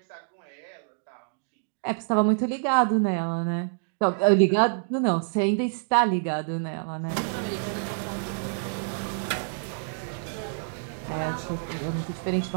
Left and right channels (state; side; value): silent; left; digital silence